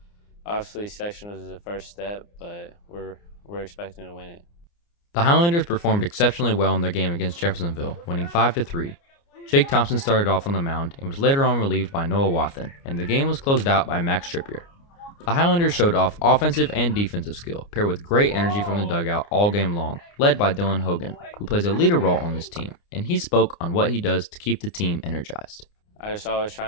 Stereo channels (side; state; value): right; late; 29 ms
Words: obviously sectionals is the first step, but we're expecting to win it. The Highlanders performed exceptionally well in their game against Jeffersonville, winning 5-3. Jake Thompson started off on the mound and was later on relieved by Noah Wathen, and the game was closed out by Max Trippier. The Highlanders showed off offensive and defensive skill, paired with great energy from the dugout all game long, led by Dylan Hogan, who plays a leader role on this team, and he spoke on what he does to keep the team energized. I just always